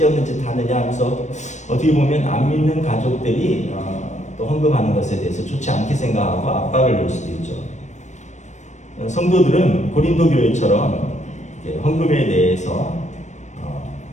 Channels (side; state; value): right; late; 0.34 ms